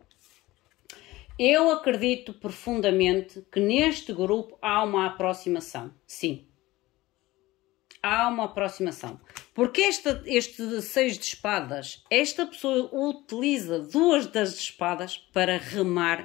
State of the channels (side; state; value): right; quieter; 18.6 dB